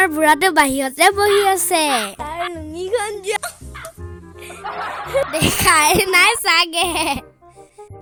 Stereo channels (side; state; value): both; identical; correlation 1.00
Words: বুঢ়াটো বাহিৰতে বহি আছে। তাৰ লুঙিখন দেখাই নাই চাগে।